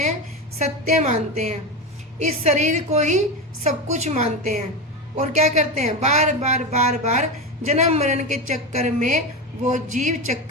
सत्य मानते हैं। इस शरीर को ही सब कुछ मानते हैं और क्या करते हैं? बार बार बार बार जन्म मरण के चक्कर में वो जीव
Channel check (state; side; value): normal; both; correlation 0.19